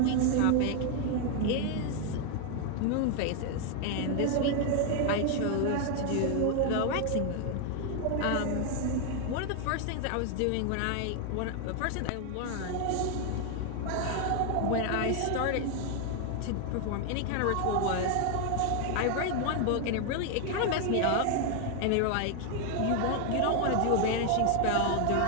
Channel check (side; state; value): both; different; correlation 0.01